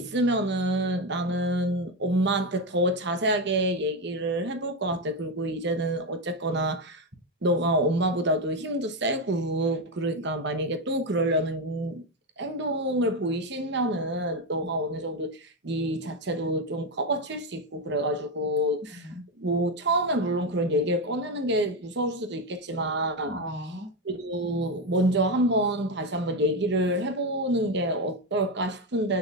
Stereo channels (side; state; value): both; normal; correlation 0.11